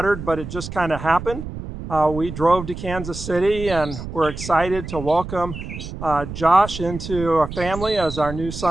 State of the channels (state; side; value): noise; right; rumble, 9 dB below the sound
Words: but it just kind of happened. We drove to Kansas City and we're excited to welcome Josh into a family as our new